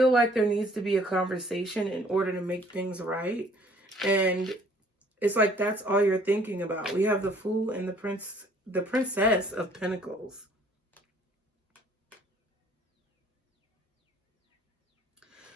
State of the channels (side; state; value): both; normal; correlation 0.58